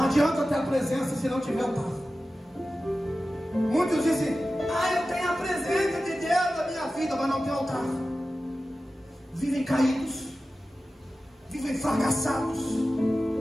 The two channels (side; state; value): both; normal; correlation 0.94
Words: adianta ter a presença se não tiver altar. Muitos dizem: eu tenho a presença de Deus na minha vida, mas não tem altar. Vivem caídos, vivem fracassados,